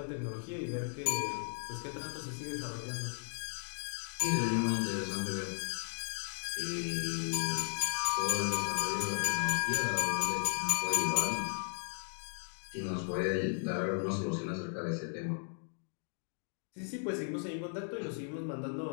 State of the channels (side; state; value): right; silent; 54 dB below the other